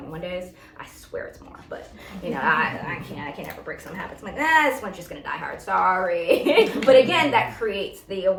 days. I swear it's more, but I can't ever break some habits. I'm like, this one's just gonna die hard, sorry. But again, that creates the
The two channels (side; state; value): both; identical; correlation 1.00